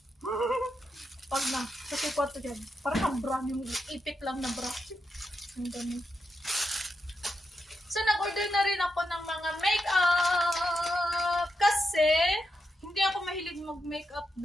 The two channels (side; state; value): both; normal; correlation 0.85